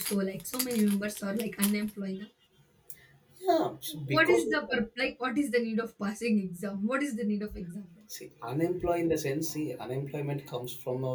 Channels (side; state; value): both; identical; correlation 1.00